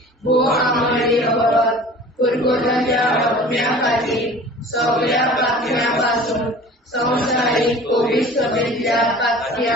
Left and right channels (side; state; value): both; normal; correlation 0.43